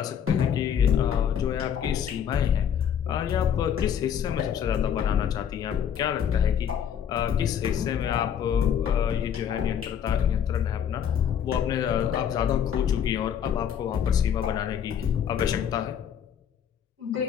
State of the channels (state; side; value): quieter; right; 8.6 dB